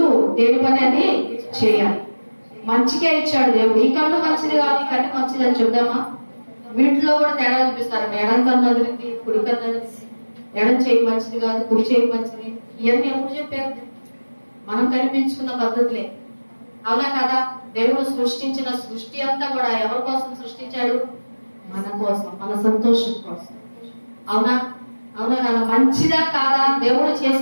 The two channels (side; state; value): both; inverted; correlation -1.00